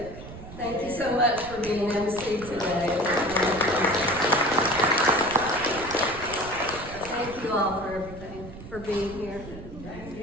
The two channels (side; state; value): right; noise; rumble, 14 dB below the sound